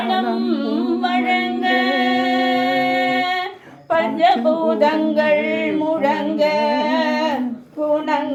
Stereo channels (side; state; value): both; identical; correlation 1.00